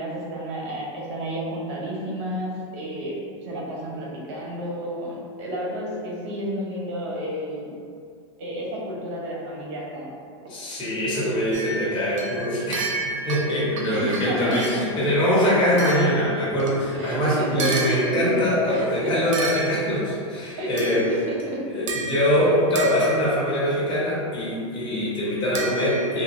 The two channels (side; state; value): both; normal; correlation 0.08